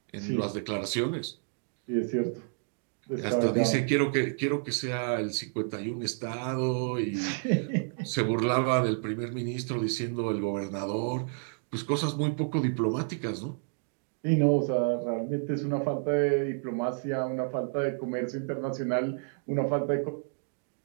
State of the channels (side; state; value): left; silent; 56 dB below the other